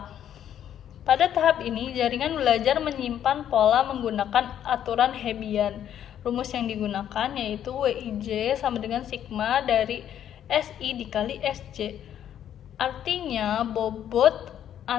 Pada tahap ini, jaringan belajar menyimpan pola menggunakan aturan Hebbian. Rumus yang digunakan yaitu WIJ sama dengan sigma dari SI dikali SJ. Artinya, bobot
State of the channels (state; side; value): quieter; right; 10.2 dB